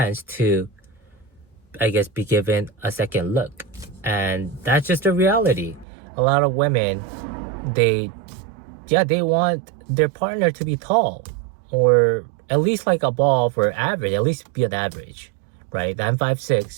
to, I guess, be given a second look. And that's just the reality. A lot of women, they want their partner to be tall, or at least like above or average, at least be an average, right? I'm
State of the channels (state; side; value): drops out; left; at 5.9 s